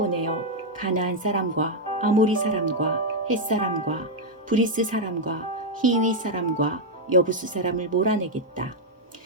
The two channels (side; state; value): both; normal; correlation 0.00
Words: 가나안 사람과 아모리 사람과 헷 사람과 브리스 사람과 히위 사람과 여부수 사람을 몰아내겠다.